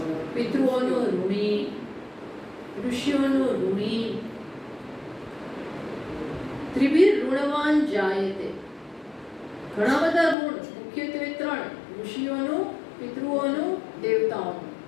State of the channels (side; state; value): right; drops out; at 10.4 s